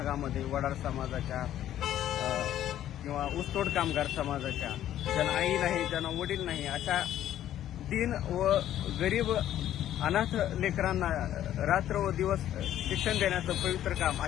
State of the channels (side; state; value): right; quieter; 11.9 dB